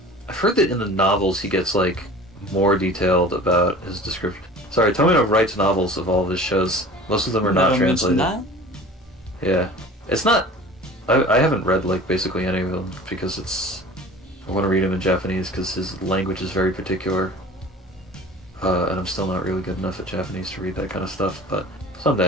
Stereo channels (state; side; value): normal; both; correlation 0.42